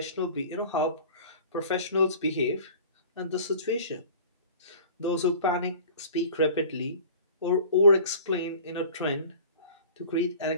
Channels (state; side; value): inverted; both; correlation -0.44